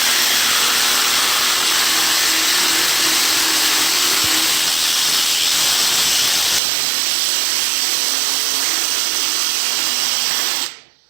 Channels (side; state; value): left; drops out; at 6.6 s